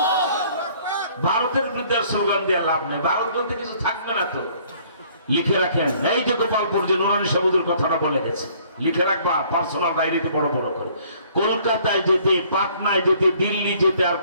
দেওয়ার স্লোগান দেওয়া লাভ নেই, ভারত বলতে কিছু থাকবে না তো। লিখে রাখেন, এই যে গোপালপুর যে নুরানি সাবুদের কথাটা বলে গেছে, লিখে রাখবা পার্সোনাল ডায়েরিতে বড় বড় করে। কলকাতায় যেতে, পাটনায় যেতে, দিল্লি যেতে আর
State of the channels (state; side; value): inverted; both; correlation -0.59